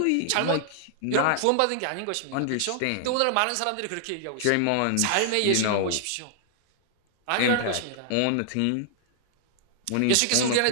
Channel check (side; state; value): both; different; correlation -0.01